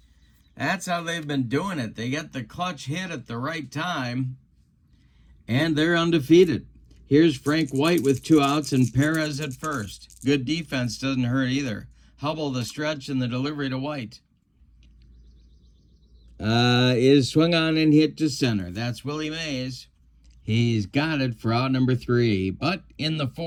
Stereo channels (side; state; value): both; identical; correlation 1.00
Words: That's how they've been doing it. They get the clutch hit at the right time, and they're undefeated. Here's Frank White with 2 outs and Perez at first. Good defense doesn't hurt either. Hubbell, the stretch and the delivery to White. Is swung on and hit to center. That's Willie Mays. He's got it for out number 3. But in the